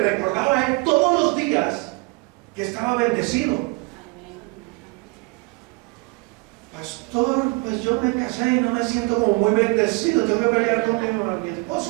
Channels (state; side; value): quieter; left; 28.6 dB